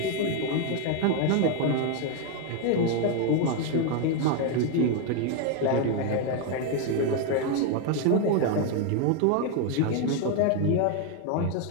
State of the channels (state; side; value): different; both; correlation 0.01